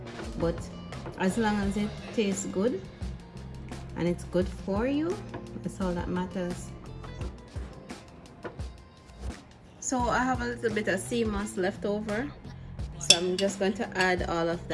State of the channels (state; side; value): identical; both; correlation 1.00